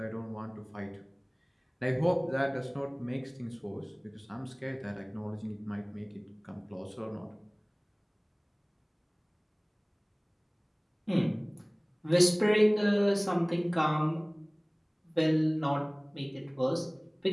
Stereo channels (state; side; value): identical; both; correlation 1.00